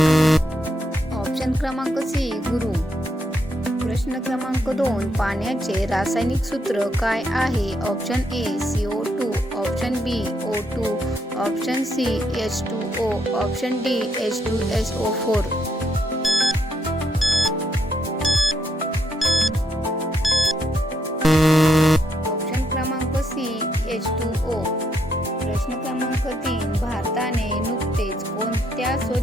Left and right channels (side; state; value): both; normal; correlation 0.77